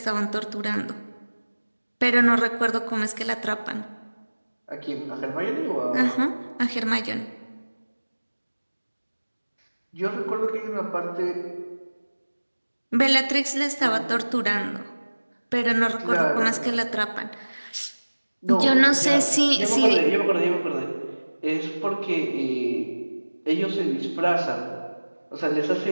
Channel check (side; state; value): both; inverted; correlation -1.00